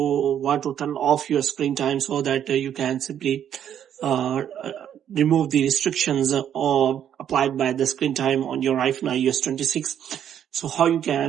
to turn off your screen time so that you can simply uh, uh, remove the restrictions applied by the screen time on your iPhone iOS 26. So how you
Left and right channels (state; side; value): quieter; left; 9.6 dB